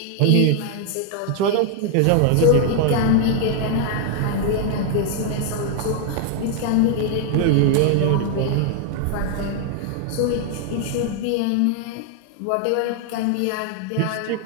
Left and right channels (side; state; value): both; different; correlation 0.00